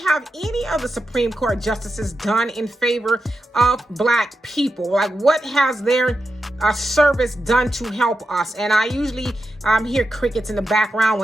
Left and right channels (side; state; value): both; normal; correlation 0.89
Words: any of the Supreme Court justices done in favor of Black people? Like, what has their service done to help us? And I usually hear crickets in the background